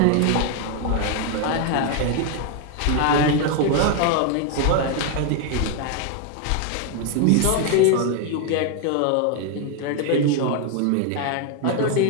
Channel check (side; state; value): both; different; correlation 0.01